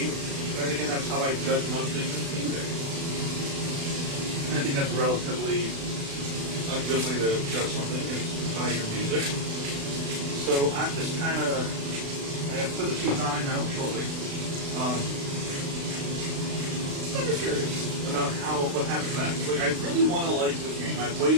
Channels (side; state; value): left; late; 36 ms